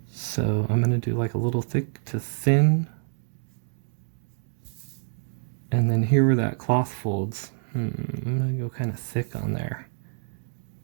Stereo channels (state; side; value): silent; left; digital silence